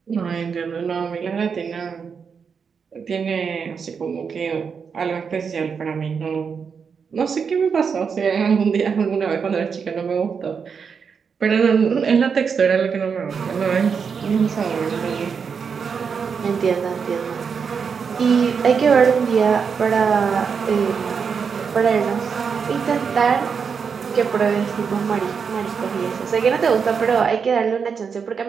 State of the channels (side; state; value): left; quieter; 6.2 dB